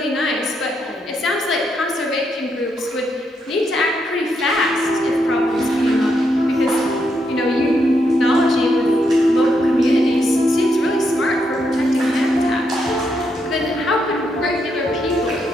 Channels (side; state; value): both; normal; correlation 0.79